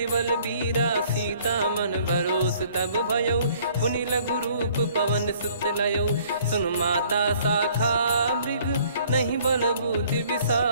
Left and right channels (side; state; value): both; inverted; correlation -0.58